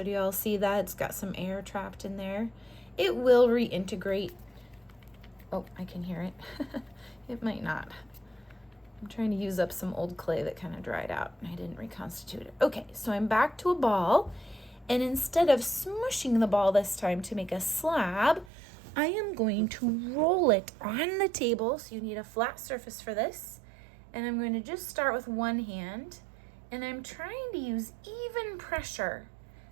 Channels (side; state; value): left; drops out; at 18.5 s